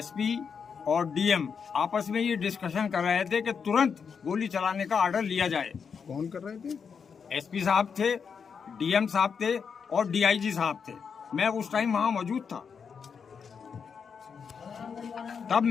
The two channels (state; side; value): quieter; right; 6.3 dB